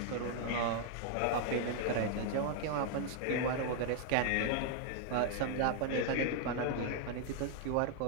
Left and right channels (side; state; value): both; different; correlation 0.00